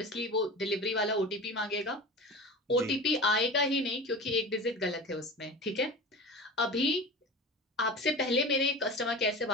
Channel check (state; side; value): normal; both; correlation 0.33